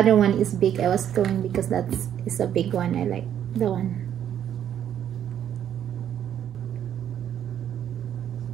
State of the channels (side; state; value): left; quieter; 10.0 dB